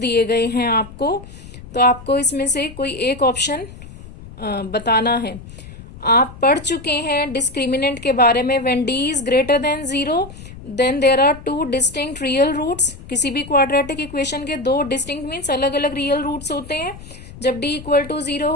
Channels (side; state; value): left; noise; rumble, 16 dB below the sound